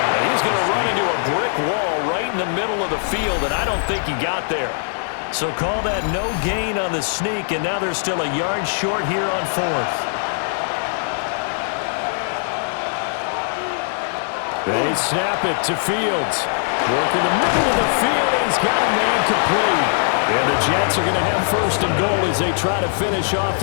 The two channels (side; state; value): right; silent; digital silence